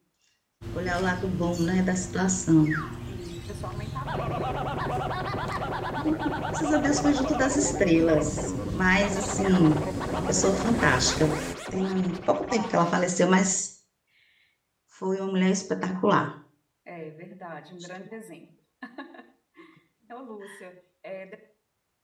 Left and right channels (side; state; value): both; identical; correlation 1.00